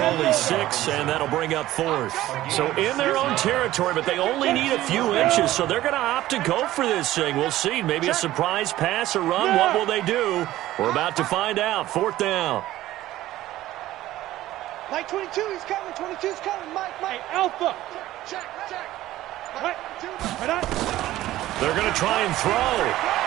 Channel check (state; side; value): quieter; left; 15.1 dB